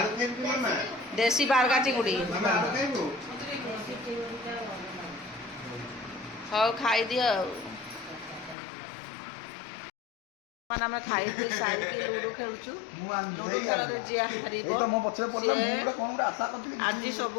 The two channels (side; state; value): right; drops out; at 8.6 s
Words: ଖାଇବୁ ମାମା ଦେଶୀ ବାରଗା ଚିଙ୍ଗୁଡି। ମାମା ଆଳୁ ଖାଇବୁ ହଉ ଖାଇଦିଅ ଆଉ। ମାନେ ଆମେ ଖାଇ ପିଇ ସାରିକି ଲୁଡୁ ଖେଳୁଛୁ। ଲୁଡୁ ଖେଳରେ ଯିଏ ହାରିବ ସିଏ ଆଜି ସବୁ